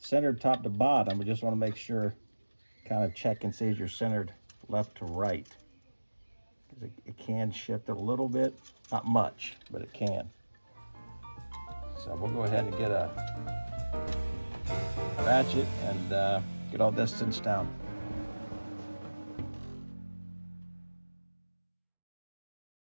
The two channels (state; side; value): inverted; both; correlation -1.00